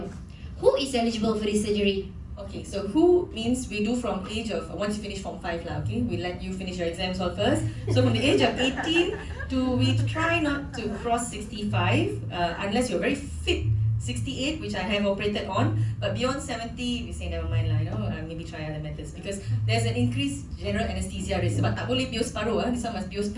who is eligible for this surgery? Okay, so who means we do from age of, once you finish Form 5 lah, okay? We let you finish your exams all first. So from the age of 18 to, we try not to cross 65 unless you're very fit. 68, which I have operated on, but beyond 70, we say never mind lah, maybe try other methods because there's an increased general anesthesia risk. Sebab tak boleh bios paruh, this one must bios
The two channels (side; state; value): both; identical; correlation 1.00